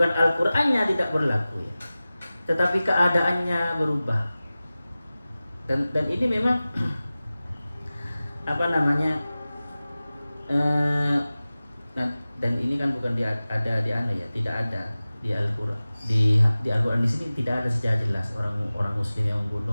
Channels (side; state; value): both; inverted; correlation -0.97